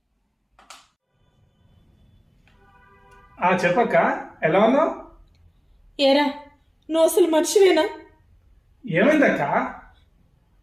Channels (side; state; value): both; identical; correlation 1.00